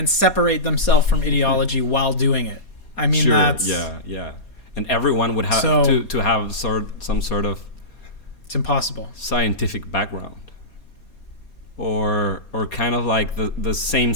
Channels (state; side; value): late; right; 4.2 ms